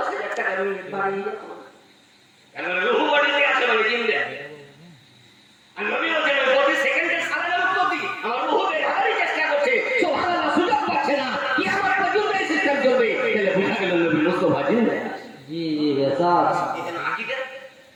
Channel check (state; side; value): identical; both; correlation 1.00